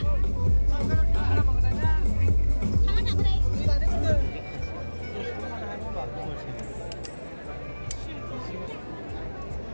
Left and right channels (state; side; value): inverted; both; correlation -1.00